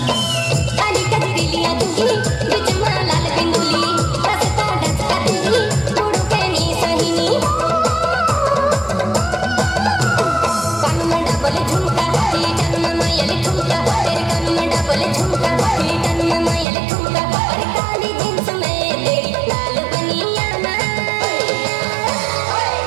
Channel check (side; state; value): left; drops out; at 16.7 s